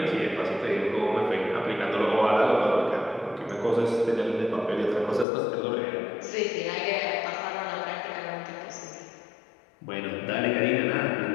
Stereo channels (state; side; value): drops out; right; at 5.2 s